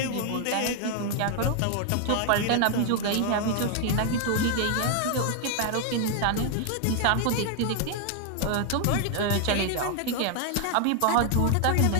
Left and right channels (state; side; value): different; both; correlation 0.00